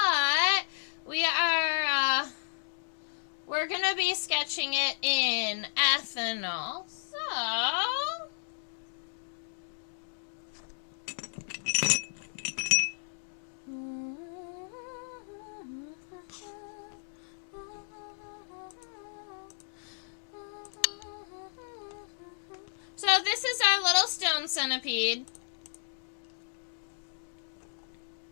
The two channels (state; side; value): silent; right; digital silence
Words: we're gonna be sketching it in ethanol. So this is our little stone centipede.